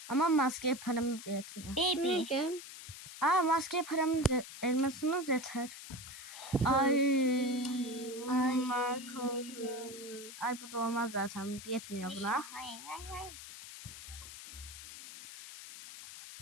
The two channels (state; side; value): noise; left; hiss, 13 dB below the sound